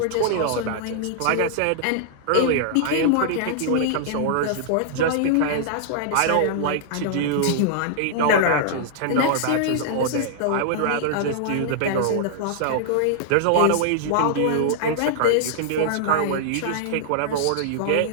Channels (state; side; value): different; both; correlation -0.01